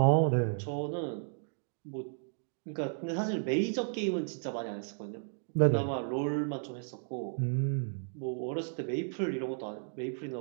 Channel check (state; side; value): silent; left; digital silence